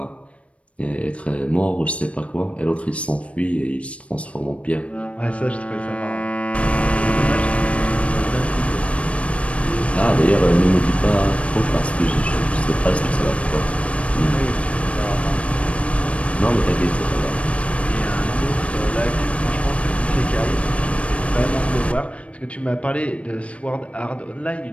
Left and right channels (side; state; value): right; late; 0.063 ms